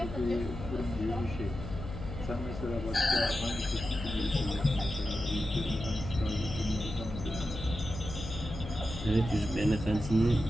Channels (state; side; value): noise; left; hum, 8 dB below the sound